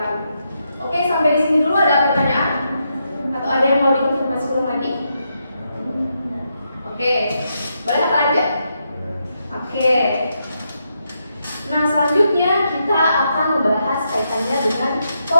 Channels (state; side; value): inverted; both; correlation -0.82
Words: Oke, sampai di sini dulu ada pertanyaan? Atau ada yang mau dikonfirmasi ulang lagi? Oke, boleh kita lanjut? Oke. Nah, selanjutnya kita akan membahas kaitannya dengan